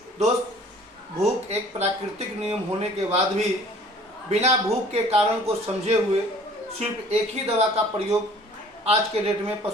दोस्त, भूख एक प्राकृतिक नियम होने के बाद भी बिना भूख के कारण को समझे हुए सिर्फ एक ही दवा का प्रयोग आज के डेट में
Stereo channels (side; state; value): both; normal; correlation 0.52